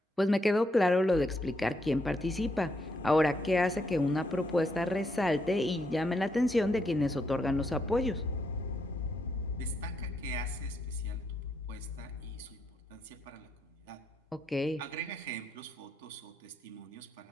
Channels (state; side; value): normal; both; correlation 0.77